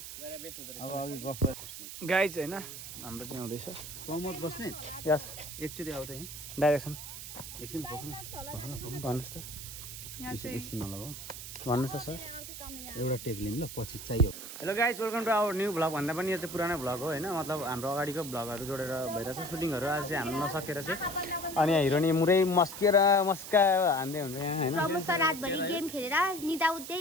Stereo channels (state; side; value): noise; right; hiss, 10 dB below the sound